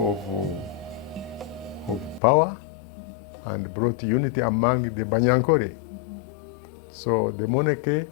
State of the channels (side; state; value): right; drops out; at 2.2 s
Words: of power and brought unity among the Banyankore. So the monarchy